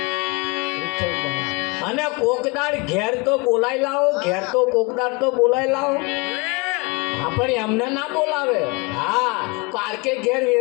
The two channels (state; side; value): quieter; right; 28.1 dB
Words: અને કોકદાર ઘેર તો બોલાઈ લાવો, ઘેર તો કોકદાર તો બોલાઈ લાવો. હા પણ એમને ના બોલાવે. હા પાર્કે ઘેર